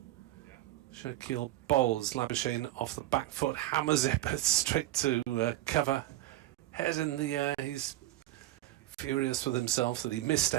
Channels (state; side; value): quieter; left; 15.6 dB